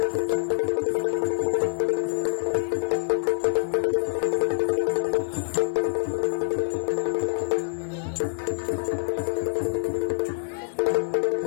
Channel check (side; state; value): right; silent; digital silence